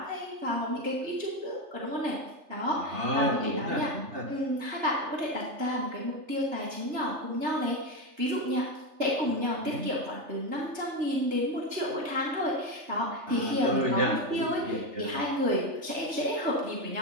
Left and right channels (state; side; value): late; left; 3.3 ms